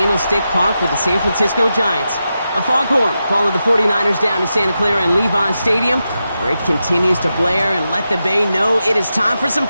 Park with the San Francisco Giants. A foghorn followed the 49ers down to Santa Clara and Levi Stadium, where it continues to blare and let the Bay know it is time for some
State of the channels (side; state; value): both; inverted; correlation -0.89